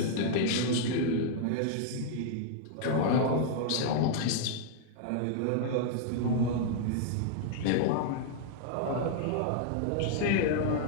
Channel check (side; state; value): both; different; correlation -0.01